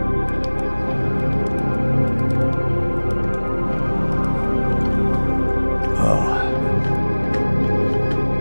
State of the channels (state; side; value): inverted; both; correlation -1.00